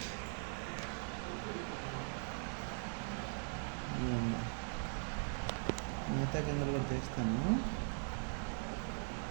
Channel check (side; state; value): left; silent; 50 dB below the other